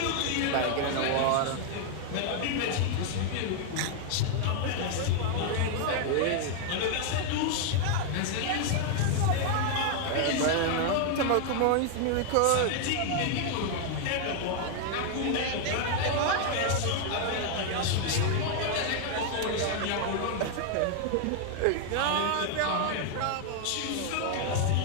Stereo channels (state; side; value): different; both; correlation 0.00